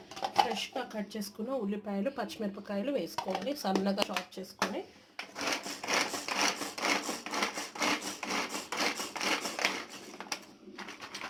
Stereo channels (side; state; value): both; identical; correlation 1.00